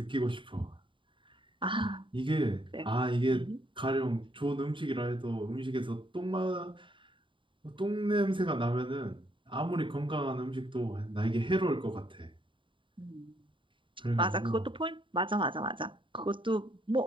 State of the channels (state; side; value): late; left; 0.24 ms